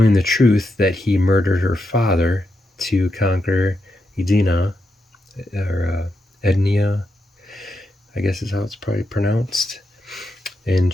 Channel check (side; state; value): both; normal; correlation 0.84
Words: the truth that he murdered her father to conquer Edina, or Ednia, I guess is how it's probably pronounced. And